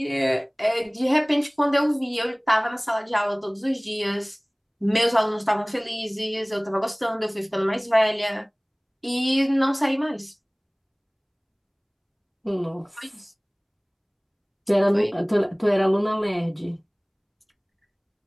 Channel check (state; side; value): identical; both; correlation 1.00